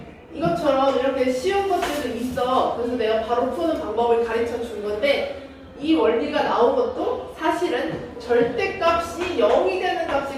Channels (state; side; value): identical; both; correlation 1.00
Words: 이것처럼 이렇게 쉬운 것들도 있어. 그래서 내가 바로 푸는 방법을 가르쳐 준 건데 이 원리가 나온 것도 사실은 절대값이 0이 되는